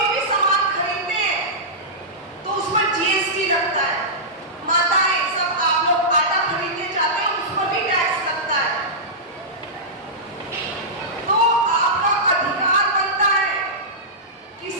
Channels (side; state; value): both; normal; correlation -0.15